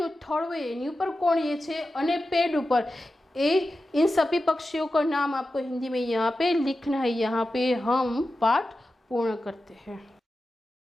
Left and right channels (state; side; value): normal; both; correlation 0.92